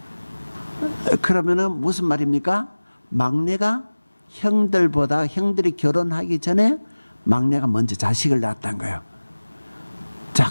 그러면은 무슨 말입니까? 막내가 형들이 결혼하기 전에 막내가 먼저 자식을 낳았다는 거예요. 자,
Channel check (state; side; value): inverted; both; correlation -1.00